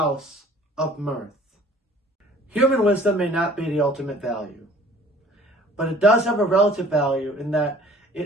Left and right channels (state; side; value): normal; both; correlation 0.51